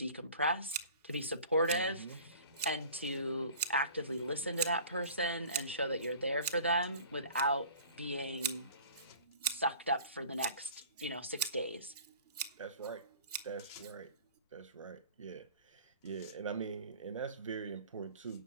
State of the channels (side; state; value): both; inverted; correlation -0.45